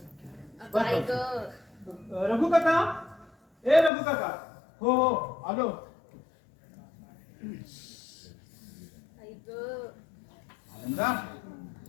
काय ग? रघु काका, ए रघु काका. हो हो आलो. आनंदा,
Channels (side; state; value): right; drops out; at 3.9 s